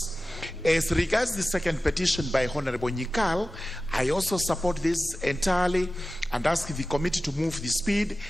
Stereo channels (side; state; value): both; normal; correlation 0.95